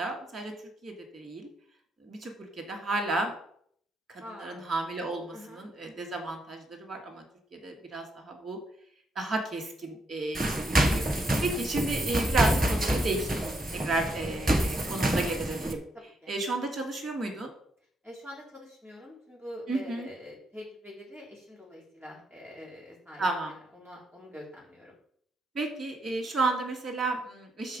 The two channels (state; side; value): normal; both; correlation 0.77